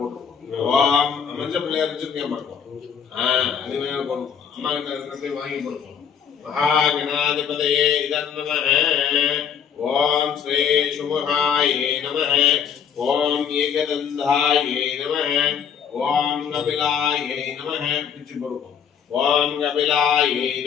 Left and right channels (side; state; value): right; quieter; 7.7 dB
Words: ஓம் மஞ்ச பிள்ளையார் வச்சிருக்கேன் பாருங்க அது மேல போடுறோம் அம்மா கிட்ட இருக்கிறதை வாங்கி போடுறோம் महागणाधिपतये इदं नमः ओम श्री शुभाये नमः ओम एकदंधाये नमः ओम कपिलाये नमः पिच्ची बोलो ओम कपिलाये